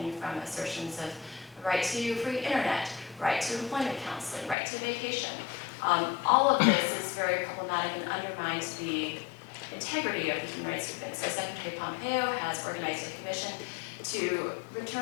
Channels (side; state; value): right; drops out; at 4.5 s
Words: from assertions of the right to free internet, right to employment counseling, right to vacation. All of this is very problematic and undermines the integrity of the human rights movement. So Secretary Pompeo has organized a commission to